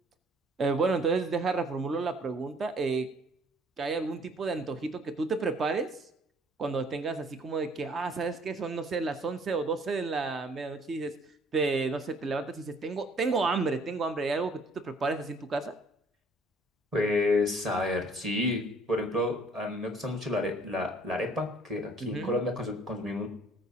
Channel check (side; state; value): both; normal; correlation 0.58